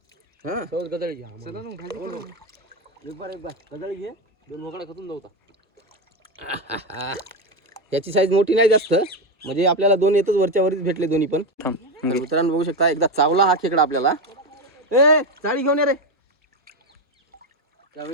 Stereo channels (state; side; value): normal; both; correlation 0.12